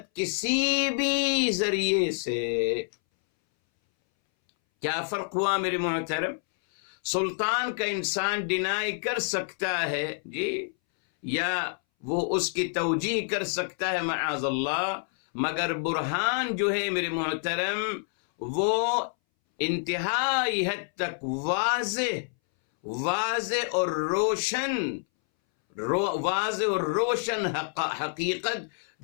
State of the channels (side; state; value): right; silent; 60 dB below the other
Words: کسی بھی ذریعے سے۔ کیا فرق ہوا میرے محترم؟ سلطان کا انسان ڈینائی کر سکتا ہے، جی، یا وہ اس کی توجیہ کر سکتا ہے معاذ اللہ، مگر برہان جو ہے میرے محترم وہ انتہائی حد تک واضح اور روشن حقیقت